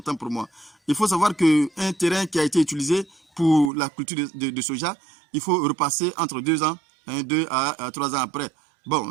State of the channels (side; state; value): left; drops out; at 3.7 s